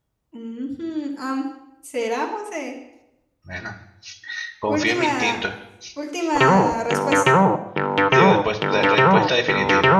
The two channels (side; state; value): both; identical; correlation 1.00